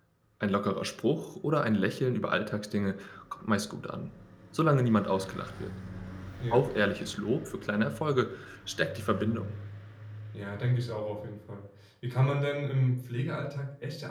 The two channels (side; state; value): both; identical; correlation 1.00